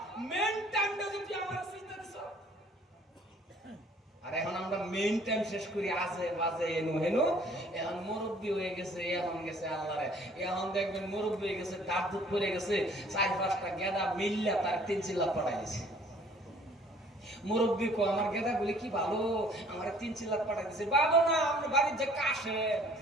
মেন টাইমটা যদি আমার সিজদা দিছ। আর এখন আমরা মেইন টাইম শেষ করি আজে বাজে এনু হেনু। এখন মুরব্বি হয়ে গেছে, এখন গেছে আল্লাহরে। এখন দেখবেন মুরব্বি হয়ে গেছে, দাঁত দুধ পড়ে গেছে, 4-5টা গেদা মিল্লা তার 3 চিল্লা পড়াই দিছে। মুরব্বি কো আমার গেদা বলে কি ভালো, আমার 3 চিল্লা পড়াই দিছে। ভালো না, আমরা বাড়ির যে কাশে,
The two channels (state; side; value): normal; both; correlation 0.56